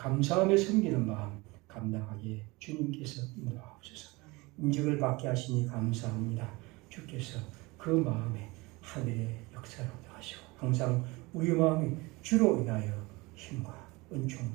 섬기는 마음 감당하기에 주님께서 인도하옵소서. 임직을 받게 하시니 감사합니다. 주께서 그 마음에 하늘의 역사를 하시고 항상 우리 마음이 주로 인하여 힘과 은총을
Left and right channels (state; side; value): quieter; left; 23.7 dB